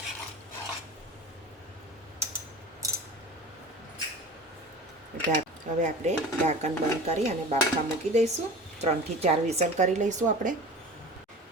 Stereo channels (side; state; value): both; normal; correlation 0.37